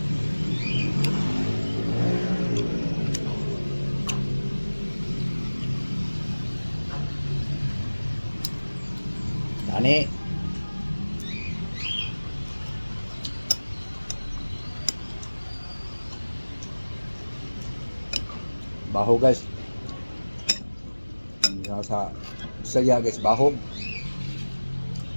Tani. Baho guys. Sa saya guys, baho.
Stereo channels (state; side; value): inverted; both; correlation -1.00